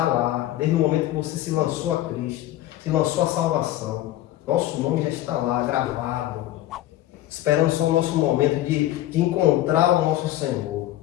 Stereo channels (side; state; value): right; quieter; 14.4 dB